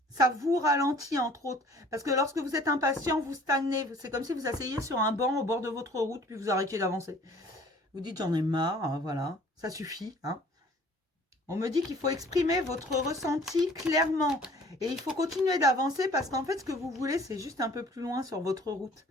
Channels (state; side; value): normal; both; correlation 0.52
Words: Ça vous ralentit entre autres. Parce que lorsque vous êtes impatient, vous stagnez. C'est comme si vous asseyez sur un banc au bord de votre route, puis vous arrêtiez d'avancer. Vous dites j'en ai marre, hein, voilà, ça suffit, hein. On me dit qu'il faut exprimer votre ressenti clairement. Et il faut continuer d'avancer parce qu'en fait, ce que vous voulez, c'est juste un peu plus loin sur votre route.